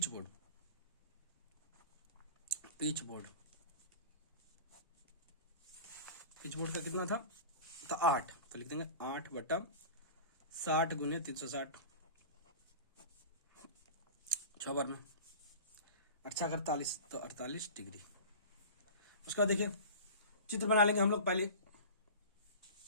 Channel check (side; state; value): both; inverted; correlation -0.35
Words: board, peach board. Peach board का कितना था? तो 8, तो लिख देंगे 8/60 गुने 360, 6 बार में 8×48, तो 48 डिग्री। उसका देखिए चित्र बना लेंगे हम लोग। पहले